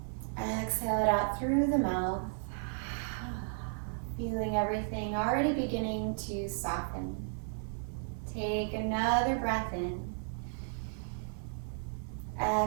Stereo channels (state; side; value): silent; left; 55 dB below the other